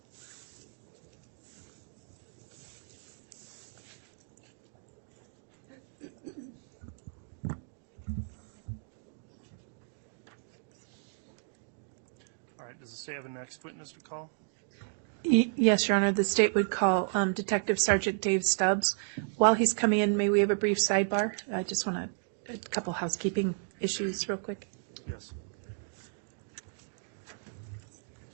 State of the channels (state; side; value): silent; left; digital silence